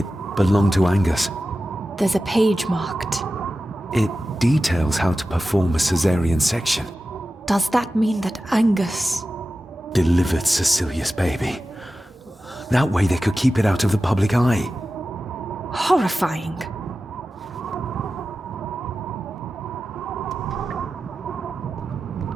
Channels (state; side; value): normal; both; correlation 0.94